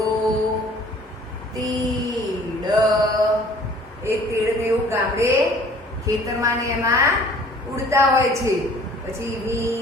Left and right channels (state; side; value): normal; both; correlation 0.52